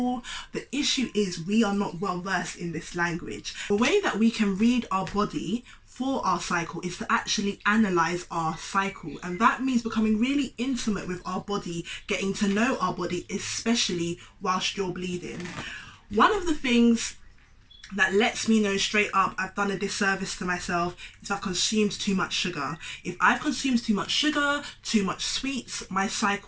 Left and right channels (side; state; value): both; identical; correlation 1.00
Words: The issue is we are not well versed in this language. The way that we can read our body for our cycle is to actually analyze our cycle, and that means becoming really intimate with our body, getting to know our body, especially whilst you're bleeding. One of the things that lets me know straight up I've done a disservice to myself is I've consumed too much sugar. If I've consumed too much sugar, too much sweets, my